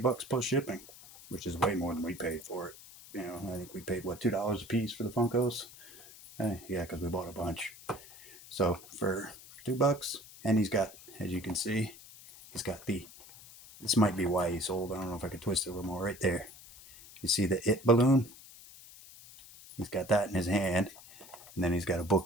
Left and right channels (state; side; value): noise; left; hiss, 19 dB below the sound